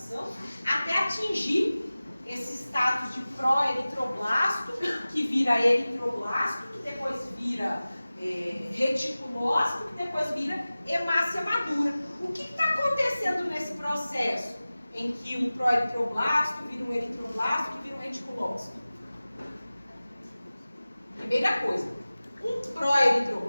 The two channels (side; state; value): both; inverted; correlation -0.97